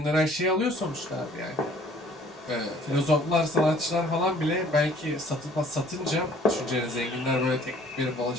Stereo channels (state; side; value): normal; both; correlation 0.56